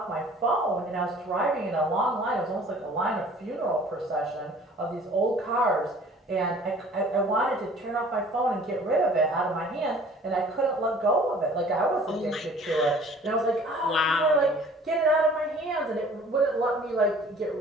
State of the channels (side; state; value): both; normal; correlation 0.51